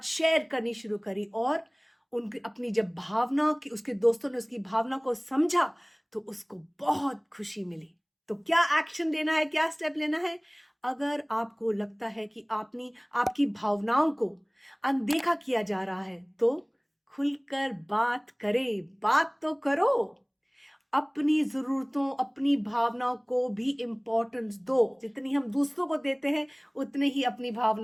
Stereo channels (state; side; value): identical; both; correlation 1.00